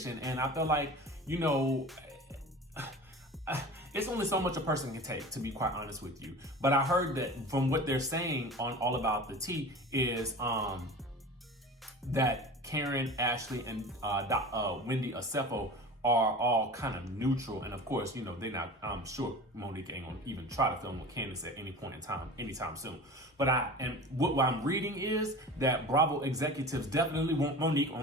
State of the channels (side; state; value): both; normal; correlation 0.36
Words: and I feel like, you know, it's only so much a person can take, to be quite honest with you. But I heard that from what they're saying on All About the Tea is that Karen, Ashley, and Wendy Osefo are all kind of neutral, and of course, you know, they're not. I'm sure Monique ain't gonna even try to film with Candiace at any point in time, anytime soon. But what I'm reading is that Bravo executives definitely want Monique